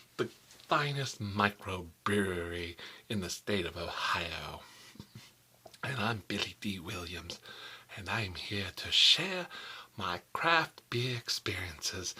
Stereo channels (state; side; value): identical; both; correlation 1.00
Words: the finest microbrewery in the state of Ohio. And I'm Billy D. Williams, and I'm here to share my craft beer experiences